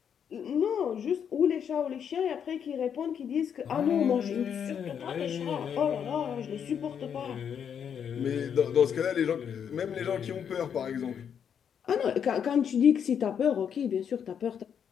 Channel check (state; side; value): quieter; right; 7.9 dB